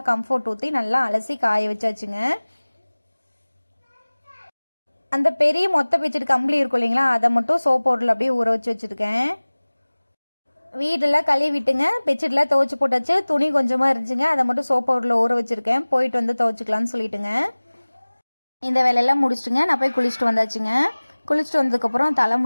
கம்ஃபர்ட் ஊற்றி நல்லா அலசி காய வச்சாச்சுங்க. அந்த பெரிய மொத்த பெட்ஷீட் கம்பளி இருக்கும் இல்லைங்களா, அதை மட்டும் சோப் பவுடரில் அப்படியே ஊற வச்சு வச்சுருக்கேன். வீடெல்லாம் கழுவி விட்டுங்க பெட்ஷீட்லாம் துவைச்சி போட்டாச்சு. துணி கொஞ்சமாக இருந்துச்சுங்க, அதை மட்டும் சோப் பவுடரில் ஊற வச்சுருக்கேன். போயிட்டு வந்து துவைச்சிக்கலான்னு சொல்லிட்டுங்க இந்த வேலையெல்லாம் முடிச்சுட்டுங்க நான் போய் குளிச்சுட்டு வந்தாச்சுங்க. குளிச்சுட்டு வந்ததுக்கப்புறம்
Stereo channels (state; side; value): inverted; both; correlation -1.00